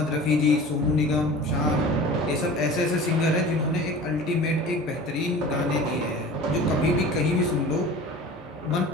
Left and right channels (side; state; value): both; normal; correlation 0.39